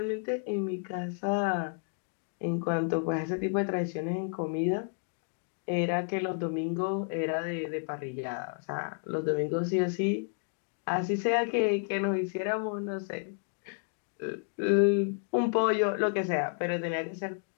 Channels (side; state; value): right; silent; 57 dB below the other